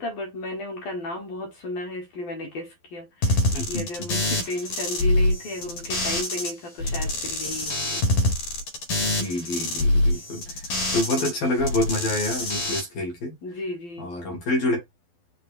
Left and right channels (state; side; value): late; right; 12 ms